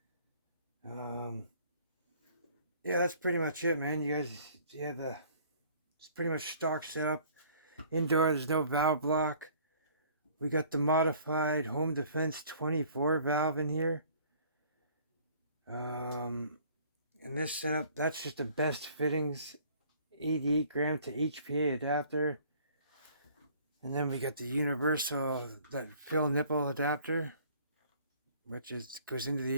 Yeah, that's pretty much it, man. You guys, it's pretty much stock setup. Indoor, there's no valve block. We got the modified Home Defense 24 valve in here. And this setup, that's just the best fittings. 88 gram to HPA adapter. And then we got the universal, that fill nipple adapter, which goes into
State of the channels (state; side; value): inverted; both; correlation -0.55